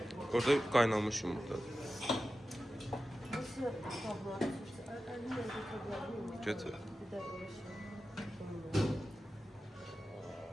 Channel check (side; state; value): both; normal; correlation 0.93